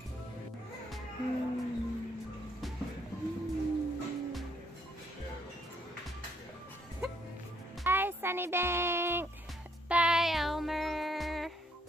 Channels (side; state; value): both; normal; correlation 0.69